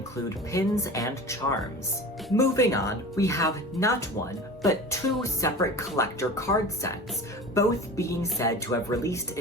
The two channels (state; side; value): normal; both; correlation 0.35